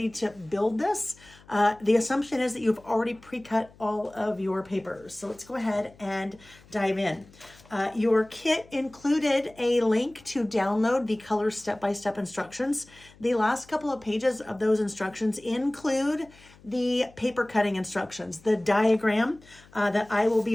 to build this, the assumption is that you've already pre-cut all of your papers. So let's go ahead and dive in. Your kit included a link to download the color step-by-step instructions. The last couple of pages of those instructions include the paper cutting instructions, the diagram that I will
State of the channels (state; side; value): noise; left; hum, 25 dB below the sound